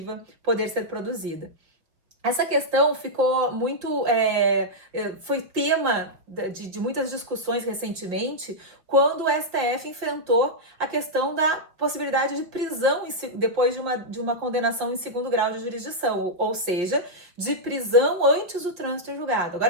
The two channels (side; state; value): left; late; 5.5 ms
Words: poder ser produzida. Essa questão ficou muito, foi tema de muitas discussões recentemente, quando o STF enfrentou a questão da possibilidade de prisão depois de uma condenação em segundo grau de jurisdição, ou seja, de prisão antes do trânsito em julgado.